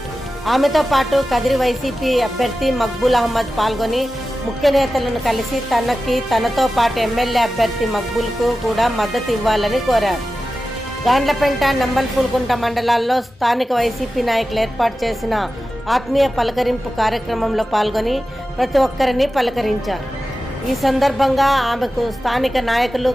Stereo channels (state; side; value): normal; both; correlation 0.94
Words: ఆమెతో పాటు కదిరి వైసీపీ అభ్యర్థి మక్బూల్ అహ్మద్ పాల్గొని ముఖ్య నేతలను కలిసి తనతో పాటు ఎమ్మెల్యే అభ్యర్థి మక్బూల్కు కూడా మద్దతు ఇవ్వాలని కోరారు. గాండ్లపెంట, నంబల్పూల్కుంట మండలాల్లో స్థానిక వైసీపీ నాయకులు ఏర్పాటు చేసిన ఆత్మీయ పలకరింపు కార్యక్రమంలో పాల్గొని ప్రతి ఒక్కరిని పలకరించారు. ఈ సందర్భంగా ఆమెకు స్థానిక నాయకులు,